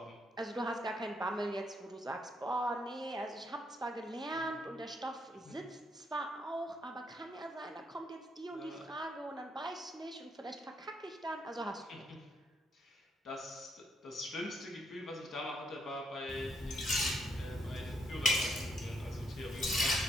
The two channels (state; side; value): normal; both; correlation 0.75